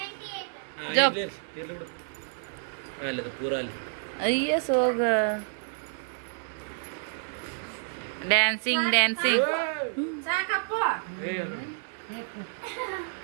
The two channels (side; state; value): left; silent; digital silence